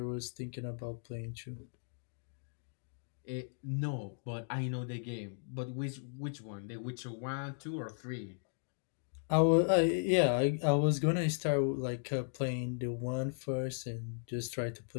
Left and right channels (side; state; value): right; silent; digital silence